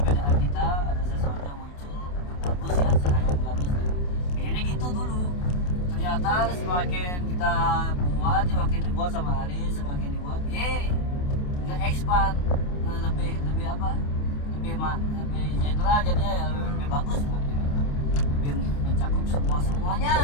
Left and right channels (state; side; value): late; right; 28 ms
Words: kita ada sesuatu yang muncul yang bagus ya, cahaya yang bagus dan pengennya gitu dulu. Ternyata semakin kita buat, semakin dibuat sama Aris, semakin dibuat, nggak expand, lebih apa? Lebih general jadinya ya lebih bagus, lebih mencakup